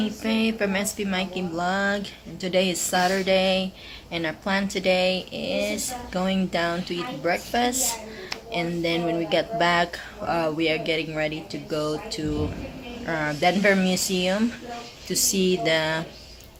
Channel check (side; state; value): both; identical; correlation 1.00